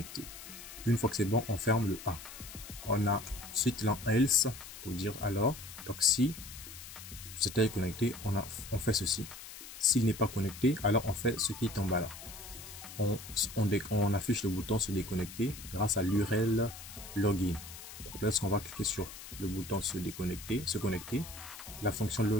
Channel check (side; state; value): left; noise; hiss, 13 dB below the sound